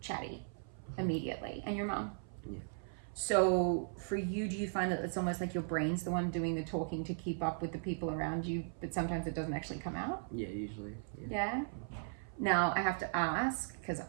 chatty immediately, and your mom. Yeah. So for you, do you find that it's almost like your brain's the one doing the talking to keep up with the people around you, but sometimes it doesn't actually come out? Yeah, usually. Yeah? Now, I have to ask, because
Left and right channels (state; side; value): silent; left; 53 dB below the other